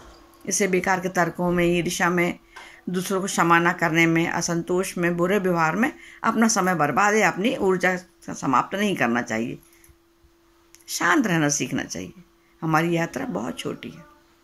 इसे बेकार के तर्कों में, ईर्ष्या में, दूसरों को क्षमा न करने में, असंतोष में, बुरे व्यवहार में अपना समय बर्बाद या अपनी ऊर्जा समाप्त नहीं करना चाहिए। शांत रहना सीखना चाहिए। हमारी यात्रा बहुत छोटी है।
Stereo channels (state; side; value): identical; both; correlation 1.00